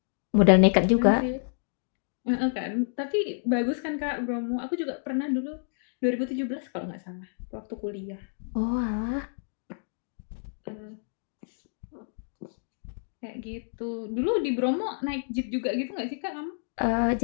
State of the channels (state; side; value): silent; right; digital silence